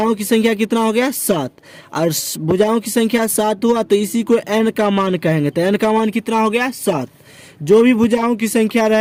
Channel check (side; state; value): both; identical; correlation 1.00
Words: की संख्या कितना हो गया 7, और भुजाओं की संख्या 7 हुआ तो इसी को n का मान कहेंगे, तो n का मान कितना हो गया 7। जो भी भुजाओं की संख्या